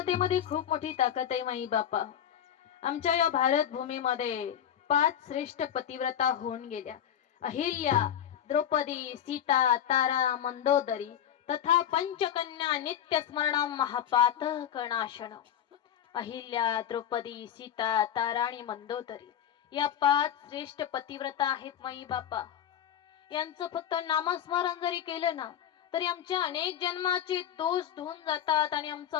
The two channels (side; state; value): right; quieter; 9.9 dB